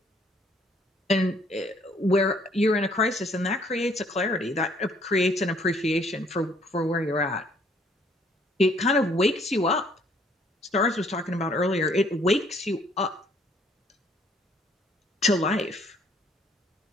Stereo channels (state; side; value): normal; both; correlation 0.63